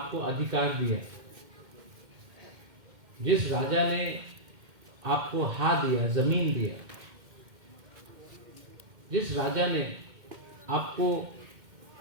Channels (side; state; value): left; late; 2.1 ms